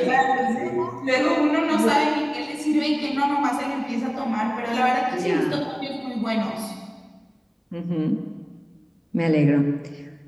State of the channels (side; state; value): both; identical; correlation 1.00